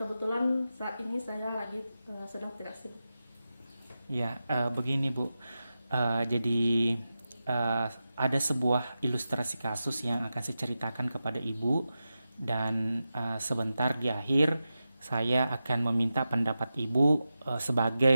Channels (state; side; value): inverted; both; correlation -0.92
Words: saat ini saya lagi sedang tidak sibuk. Ya, begini Bu. Jadi ada sebuah ilustrasi kasus yang akan saya ceritakan kepada Ibu dan sebentar di akhir saya akan meminta pendapat Ibu